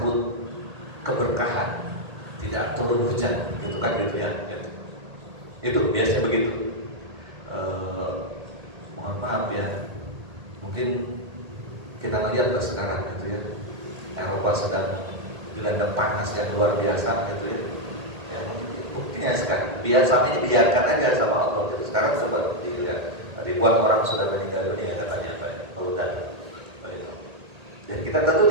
keberkahan, tidak turun hujan, gitu kan gitu ya. Itu biasa begitu. Mohon maaf ya, mungkin kita lihat sekarang gitu ya, Eropa sedang dilanda panas yang luar biasa gitu ya. Ya, buktinya sekarang biasanya dibiarkan aja sama Allah. Jadi sekarang sudah begitu ya. Ribuan orang sudah meninggal dunia katanya dan dan kita tentu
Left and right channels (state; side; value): late; left; 1.8 ms